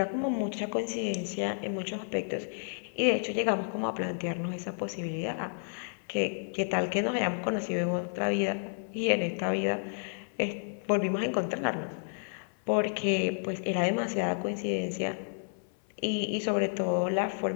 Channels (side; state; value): right; silent; 57 dB below the other